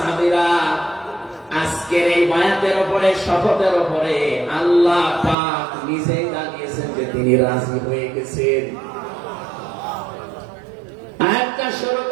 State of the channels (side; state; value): left; drops out; at 5.4 s